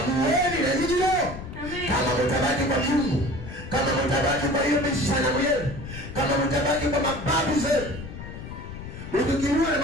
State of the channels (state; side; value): noise; left; rumble, 11 dB below the sound